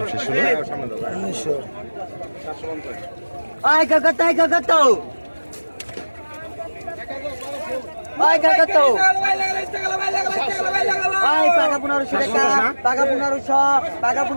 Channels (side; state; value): both; inverted; correlation -1.00